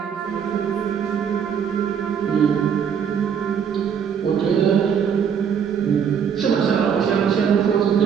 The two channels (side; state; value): left; quieter; 7.5 dB